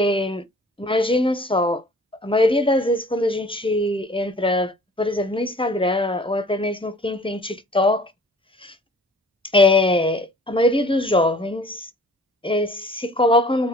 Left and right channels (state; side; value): normal; both; correlation 0.50